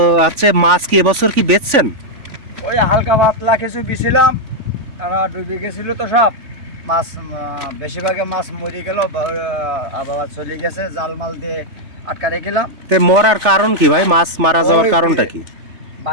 আচ্ছা, মাছ কি এবছর কি বেচছেন? ওই হালকা পাতলা কিছু বিছিলাম, ডুবে গেছিল তো সব মাছ। বেশিরভাগে মাছ মরে গেল, আবার চলে গেছে, জাল মাল দিয়ে আটকা রেখেলাম। তো মরার কারণ কি ভাই? মাছ মারা যাওয়ার কারণটা কি?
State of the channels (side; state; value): left; late; 3.4 ms